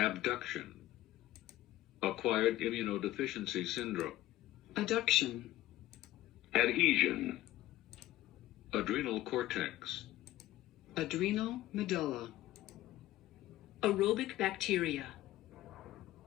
Acquired immunodeficiency syndrome. Adduction. Adhesion. Adrenal cortex. Adrenal medulla. Aerobic bacteria.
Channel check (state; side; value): quieter; right; 15.5 dB